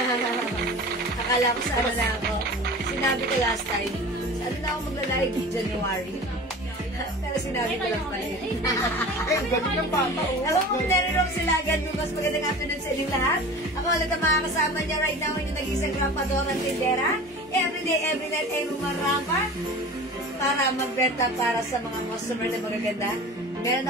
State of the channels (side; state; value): both; normal; correlation 0.37